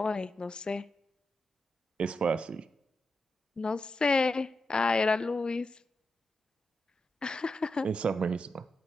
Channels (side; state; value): both; normal; correlation 0.87